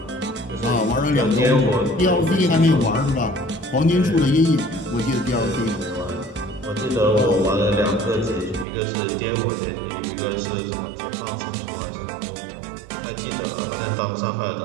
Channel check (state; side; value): drops out; left; at 8.7 s